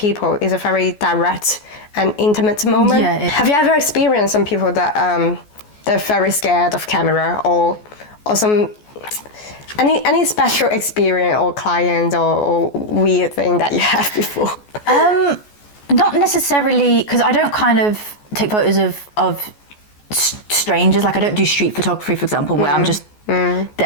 is a very direct and intimate moment. Have you ever experienced some people that they're very scared of camera, or some any special experience or client or weird thing that you have before? Not necessarily, because I don't kind of take photos of strangers. Like I don't do street photography, for example, where I'm just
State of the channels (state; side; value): late; right; 14 ms